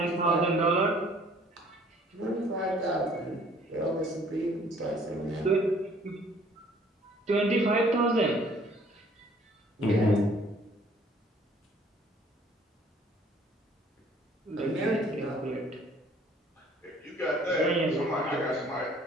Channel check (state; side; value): normal; both; correlation 0.57